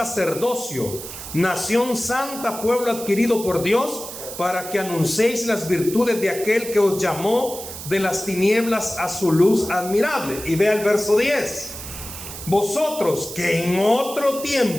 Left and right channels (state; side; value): noise; right; hiss, 11 dB below the sound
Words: nación santa, pueblo adquirido por Dios, para que anunciéis las virtudes de aquel que os llamó de las tinieblas a su luz admirable. Y vea el verso 10. Vosotros que en otro